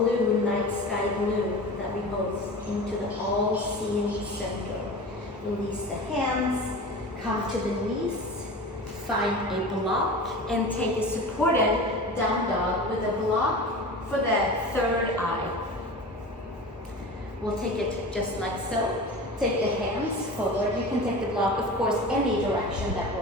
night sky blue that we host into the all-seeing center. Release the hands, come to the knees, find a block, and take a supported down dog with a block for the third eye. We'll take it just like so. Take the hands forward. You can take the block, of course, any direction that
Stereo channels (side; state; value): both; normal; correlation 0.33